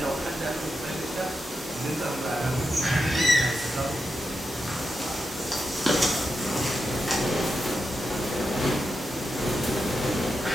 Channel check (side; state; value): both; normal; correlation 0.87